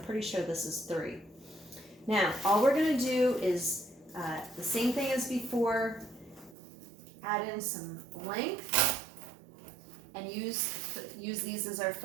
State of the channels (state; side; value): drops out; left; at 6.6 s